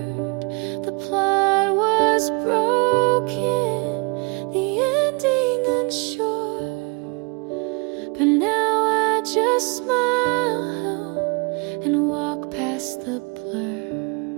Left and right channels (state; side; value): quieter; left; 31.6 dB